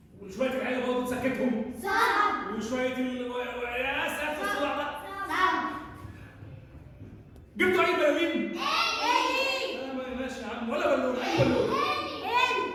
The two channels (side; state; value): both; identical; correlation 1.00